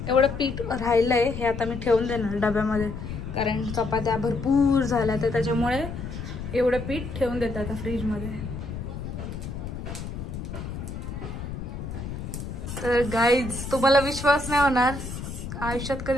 एवढं पीठ राहिलं आहे, हे आता मी ठेवून देणार डब्यामध्ये, कारण चपात्या भरपूर झाल्या तर त्याच्यामुळे एवढं पीठ ठेवून देतात आता फ्रीजमध्ये. तर गाईज तुम्हाला विश्वास नाही होणार, आयुष्यात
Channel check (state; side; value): noise; left; rumble, 7 dB below the sound